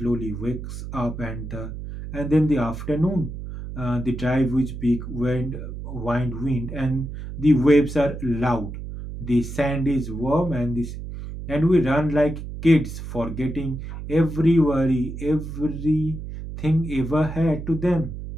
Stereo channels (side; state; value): right; noise; hum, 9 dB below the sound